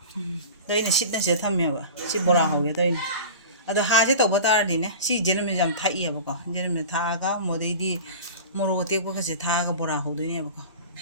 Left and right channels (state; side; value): inverted; both; correlation -0.35